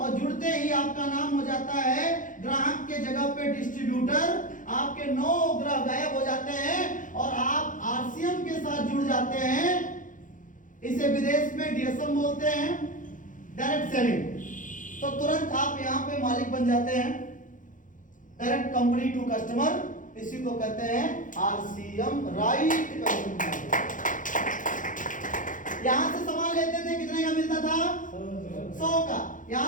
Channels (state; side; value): late; right; 0.38 ms